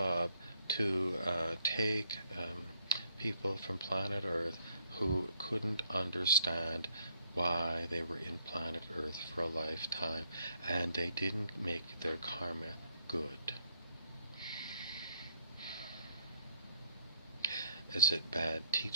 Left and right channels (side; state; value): both; inverted; correlation -0.68